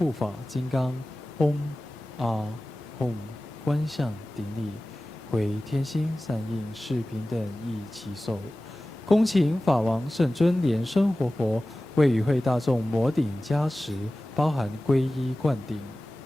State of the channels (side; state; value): both; normal; correlation 0.96